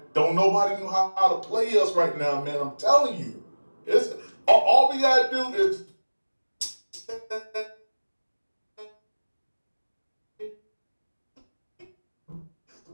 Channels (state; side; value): inverted; both; correlation -1.00